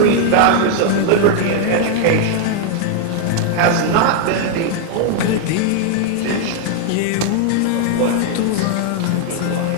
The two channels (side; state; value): both; different; correlation 0.00